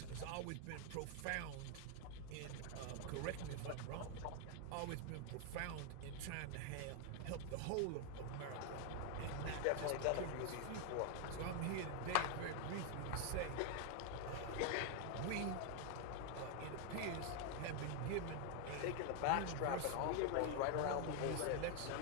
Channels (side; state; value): both; different; correlation 0.00